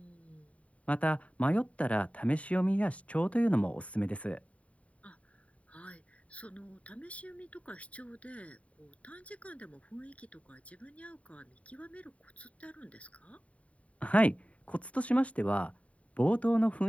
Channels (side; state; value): right; late; 0.066 ms